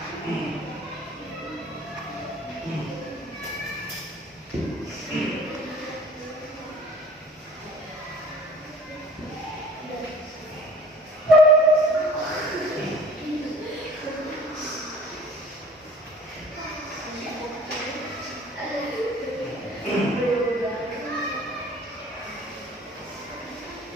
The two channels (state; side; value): normal; both; correlation 0.49